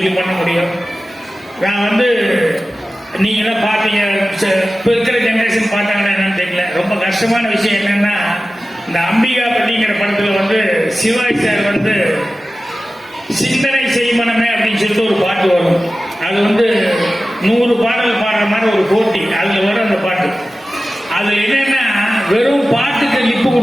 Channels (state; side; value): normal; both; correlation 0.95